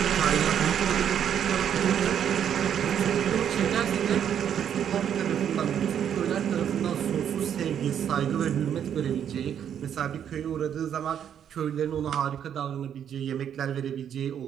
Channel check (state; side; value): quieter; left; 9.0 dB